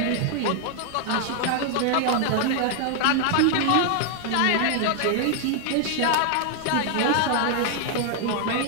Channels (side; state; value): both; different; correlation 0.00